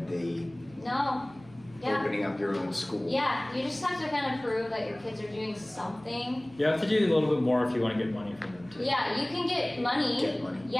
the opening up your own school. Yeah, you just have to kind of prove that your kids are doing something. You have to do a little bit more if you want to get money from them too. Yeah, you can get money. Get money.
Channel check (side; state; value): right; noise; hum, 24 dB below the sound